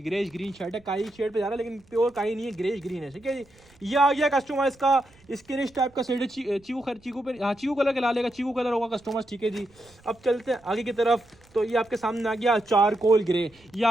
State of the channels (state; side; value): noise; right; rumble, 29 dB below the sound